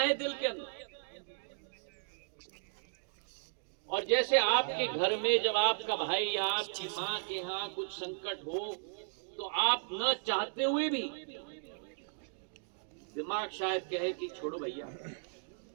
दिल के अंदर। और जैसे आपके घर में जब आपका भाई या आपकी मां के यहां कुछ संकट हो तो आप न चाहते हुए भी दिमाग शायद कहे कि छोड़ो भैया,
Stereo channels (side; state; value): left; silent; digital silence